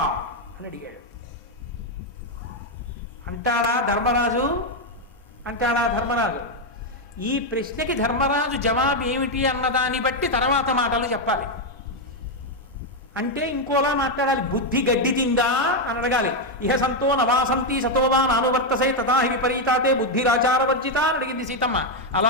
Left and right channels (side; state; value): both; normal; correlation 0.03